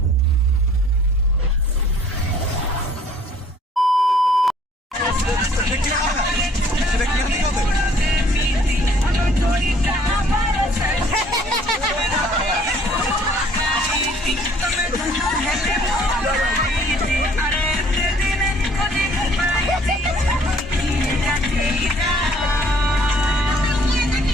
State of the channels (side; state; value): both; normal; correlation 0.58